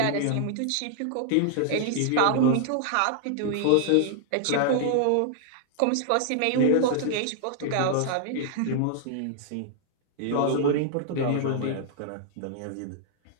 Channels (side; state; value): both; different; correlation -0.01